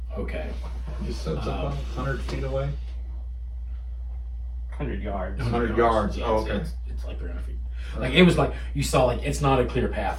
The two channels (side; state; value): both; identical; correlation 1.00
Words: Okay. Just so it's about 100 feet away. 100 yards. 100 yards. Yeah, Oh, it's- okay. It's like 300 feet. Like it was like you saw like it's not a clear